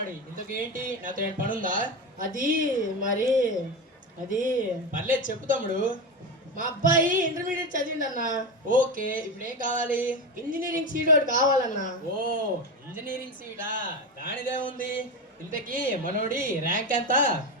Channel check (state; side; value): normal; both; correlation 0.19